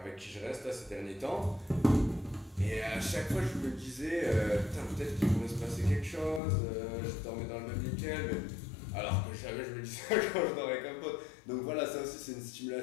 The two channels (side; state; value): right; drops out; at 6.4 s